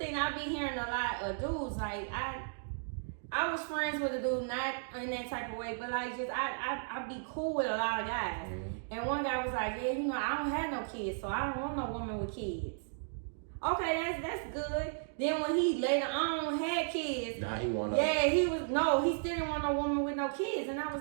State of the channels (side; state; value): left; silent; digital silence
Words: I be hearing a lot of dudes, like, I was friends with a dude, not in that type of way, but like, just, I be cool with a lot of guys. Mm-hmm. And one guy was like, yeah, I don't have no kids, so I don't want no woman with kids. Okay, that's good. Then when he later on had kids, nah, he wanted. Yeah, he still didn't want no woman with no kids, and I was